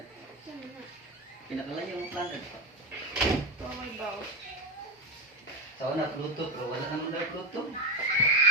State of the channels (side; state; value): both; normal; correlation 0.15